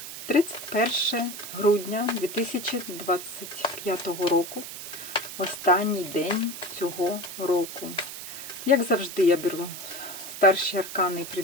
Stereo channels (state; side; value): noise; right; hiss, 10 dB below the sound